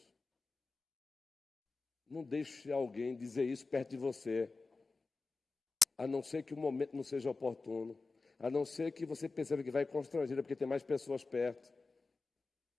Não deixe alguém dizer isso perto de você. A não ser que o momento não seja oportuno. A não ser que você perceba que vai constrangida, porque tem mais pessoas perto.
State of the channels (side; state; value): right; quieter; 3.8 dB